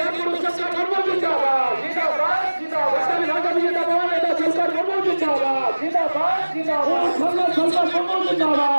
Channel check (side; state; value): both; inverted; correlation -1.00